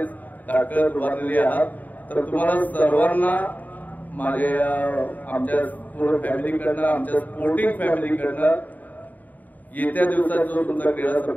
ताकद वाढलेली आहात. तर तुम्हाला सर्वांना माझ्या आमच्या पूर्ण फॅमिलीकडनं, आमच्या स्पोर्टिंग फॅमिलीकडनं येत्या दिवसात जो तुमचा क्रीडा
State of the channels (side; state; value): right; late; 0.081 ms